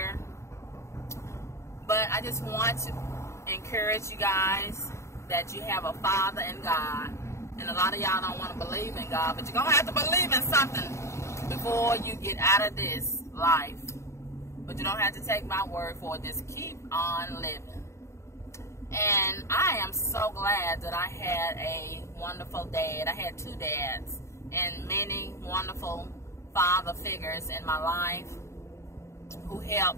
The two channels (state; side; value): late; right; 0.14 ms